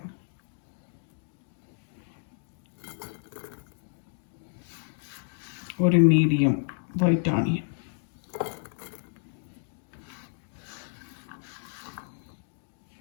ஒரு மீடியம் ஒயிட் ஆனியன்.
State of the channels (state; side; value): silent; right; digital silence